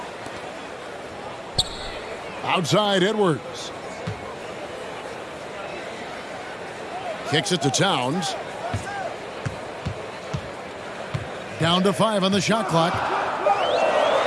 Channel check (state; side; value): identical; both; correlation 1.00